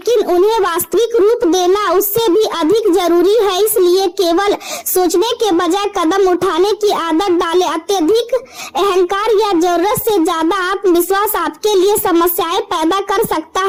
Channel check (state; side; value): identical; both; correlation 1.00